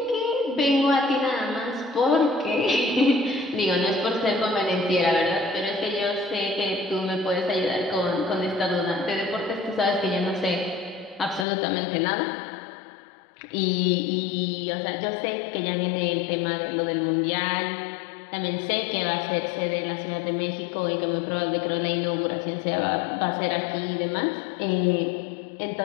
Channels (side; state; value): right; drops out; at 11.5 s